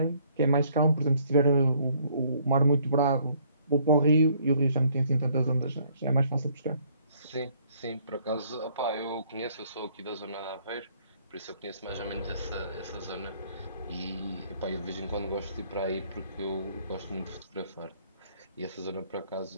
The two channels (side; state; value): both; inverted; correlation -0.64